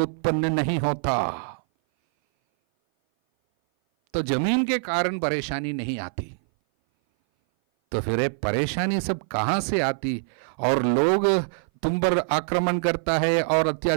नहीं होता। तो जमीन के कारण परेशानी नहीं आती, तो फिर ये परेशानी सब कहां से आती? और लोग तुम पर आक्रमण करता है और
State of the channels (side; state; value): left; silent; 58 dB below the other